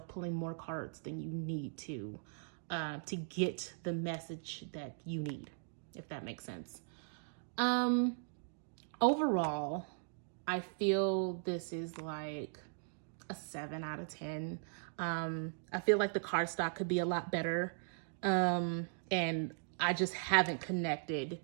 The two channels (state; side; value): silent; left; digital silence